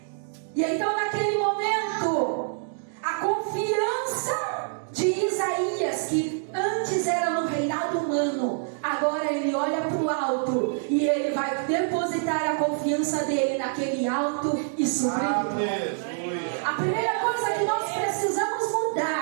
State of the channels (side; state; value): left; silent; digital silence